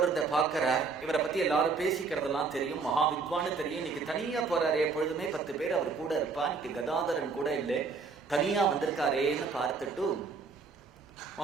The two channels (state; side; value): quieter; left; 4.7 dB